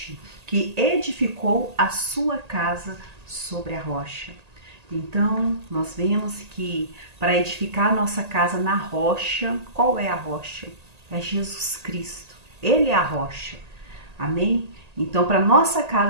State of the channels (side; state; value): left; late; 1.8 ms